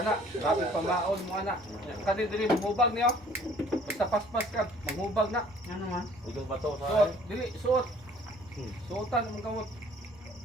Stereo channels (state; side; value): noise; right; rumble, 28 dB below the sound